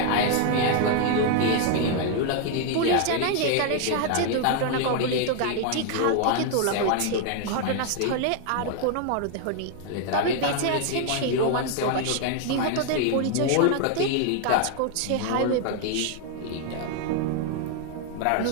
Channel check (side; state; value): both; different; correlation 0.00